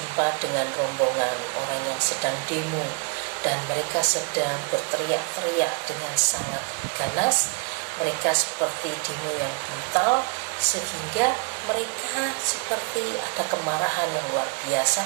dengan rombongan orang yang sedang demo, dan mereka sedang berteriak-teriak dengan sangat ganas. Mereka seperti demo yang brutal, sehingga mereka seperti ada kemarahan yang luar biasa,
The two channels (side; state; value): left; quieter; 37.5 dB